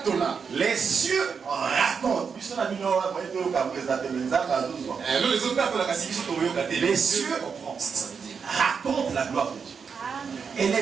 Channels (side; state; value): left; quieter; 6.0 dB